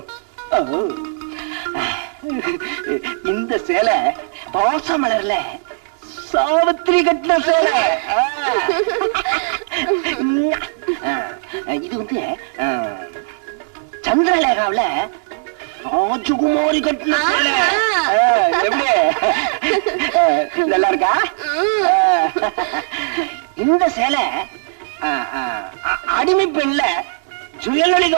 இந்த சேலை பாசமலர்ல சாவித்திரி கட்டின சேலை. இது வந்து சந்திரலேகாவில ராஜகுமாரி கட்டின சேலை. எப்படி நல்லா இருக்கா? இந்த சேலை அடிமை பெண்ல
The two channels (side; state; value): left; silent; digital silence